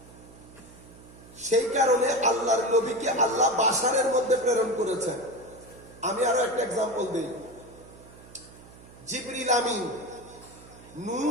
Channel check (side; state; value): right; noise; hum, 21 dB below the sound